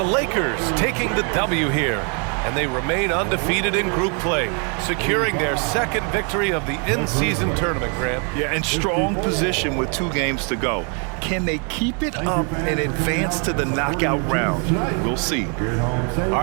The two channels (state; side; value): quieter; left; 37.9 dB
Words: Lakers taking the W here, and they remain undefeated in group play, securing their second victory of the in-season tournament, Grant. Yeah, in strong position with 2 games to go. Can they keep it up and advance to the knockout round? We'll see. All